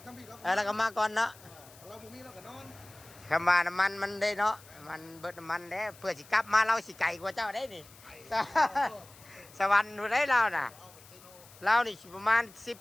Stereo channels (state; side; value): noise; left; hiss, 22 dB below the sound